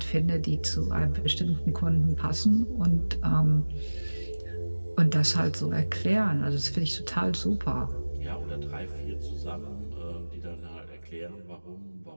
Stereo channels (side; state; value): both; inverted; correlation -1.00